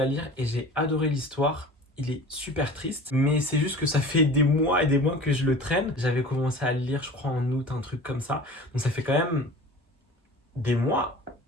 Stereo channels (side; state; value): both; normal; correlation 0.40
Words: à lire et j'ai adoré l'histoire. Il est super triste, mais c'est juste que ça fait des mois et des mois que je le traîne. J'avais commencé à le lire, je crois, en août, un truc comme ça. Donc ça fait quand même des mois,